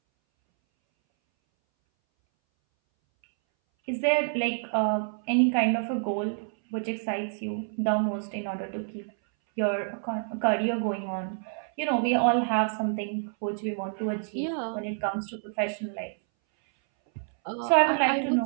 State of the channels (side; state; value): left; silent; 59 dB below the other